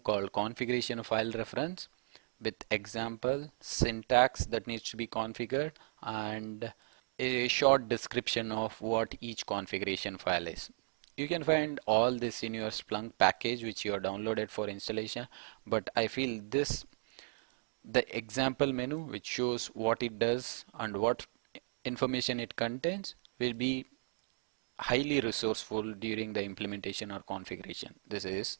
called configuration file reference with example syntax that needs to be configured and a short description of what each configuration file is. You can find all this in your Splunk package which you are downloaded for installation, but I feel this, the example menu which shows what it does and what information it contains, will be highly resourceful during the implementation or configuration. This is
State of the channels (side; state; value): left; silent; digital silence